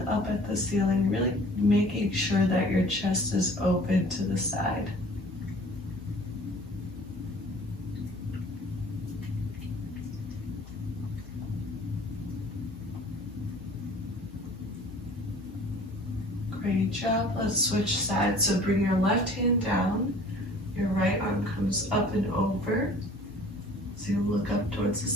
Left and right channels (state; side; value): normal; both; correlation 0.49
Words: up at the ceiling, really making sure that your chest is open to the side. Great job. Let's switch sides. So bring your left hand down. Your right arm comes up and over. So you look up towards the